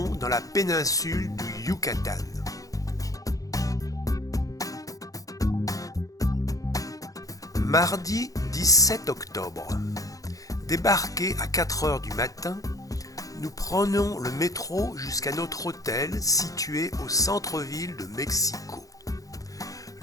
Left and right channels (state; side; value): late; right; 0.17 ms